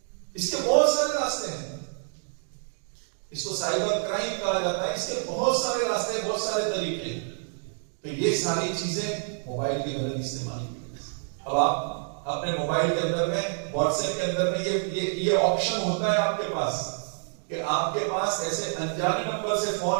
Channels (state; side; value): silent; left; digital silence